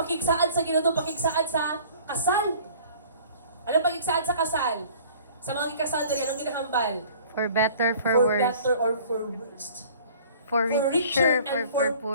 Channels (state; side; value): inverted; both; correlation -0.50